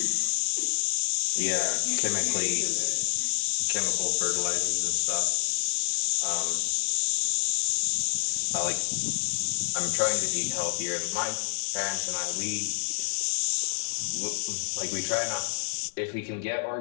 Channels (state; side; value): silent; right; 60 dB below the other